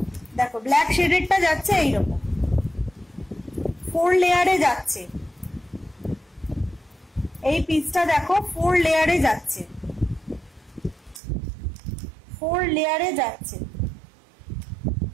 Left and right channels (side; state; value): left; drops out; at 11.2 s